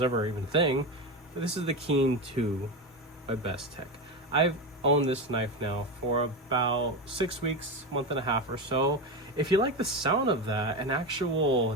ever even a thing. But this is the Keen 2 by Bestech. I've owned this knife now for about 6 weeks, month and a half or so. If you like the sound of that, an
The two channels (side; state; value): both; normal; correlation 0.17